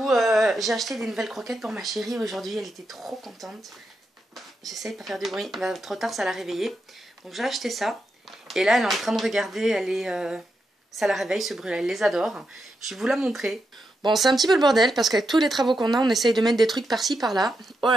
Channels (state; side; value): normal; both; correlation 0.85